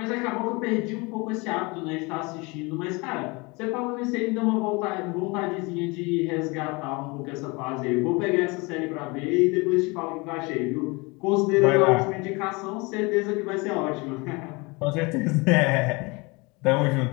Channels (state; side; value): quieter; right; 26.7 dB